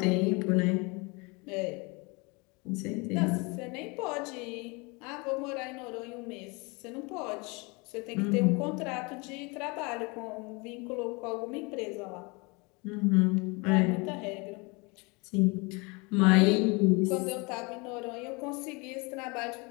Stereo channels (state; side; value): quieter; right; 28.4 dB